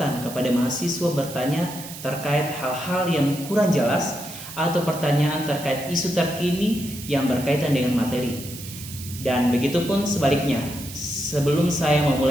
kepada mahasiswa bertanya terkait hal-hal yang kurang jelas atau pertanyaan terkait isu terkini yang berkaitan dengan materi. Dan begitupun sebaliknya, sebelum saya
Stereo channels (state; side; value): noise; right; hiss, 13 dB below the sound